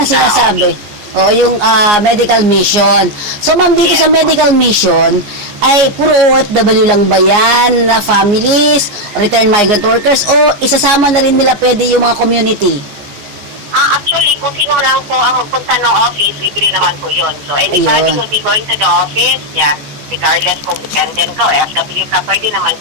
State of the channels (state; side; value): late; left; 14 ms